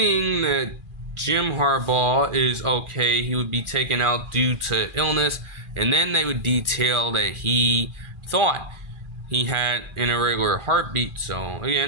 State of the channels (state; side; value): late; left; 2.4 ms